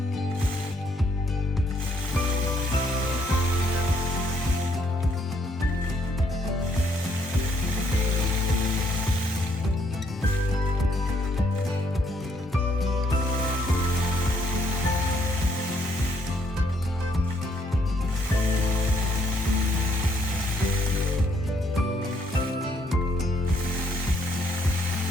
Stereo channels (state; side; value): normal; both; correlation 0.70